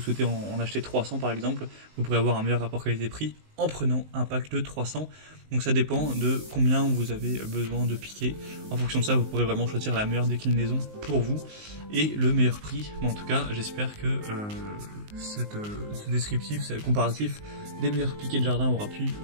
souhaitez en acheter 300 par exemple, vous pourrez avoir un meilleur rapport qualité-prix en prenant un pack de 300. Donc ça dépend de combien vous avez besoin de piquets. En fonction de ça vous pourrez vraiment choisir la meilleure déclinaison pour vous et le meilleur prix. Mais en tout cas j'espère que ce descriptif, ce comparatif des meilleurs piquets de jardin aura pu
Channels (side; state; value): left; late; 19 ms